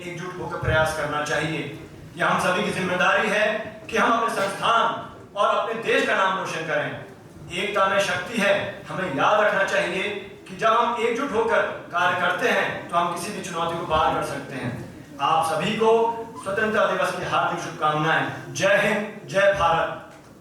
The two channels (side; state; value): both; identical; correlation 1.00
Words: एकजुट होकर प्रयास करना चाहिए। यह हम सभी की जिम्मेदारी है कि हम अपने संस्थान और अपने देश का नाम रोशन करें। एकता में शक्ति है। हमें याद रखना चाहिए कि जब हम एकजुट होकर कार्य करते हैं तो हम किसी भी चुनौती को पार कर सकते हैं। आप सभी को स्वतंत्रता दिवस की हार्दिक शुभकामनाएं। जय हिंद, जय Bharat.